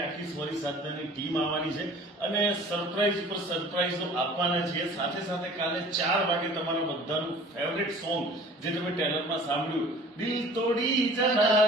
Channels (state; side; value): normal; both; correlation 0.46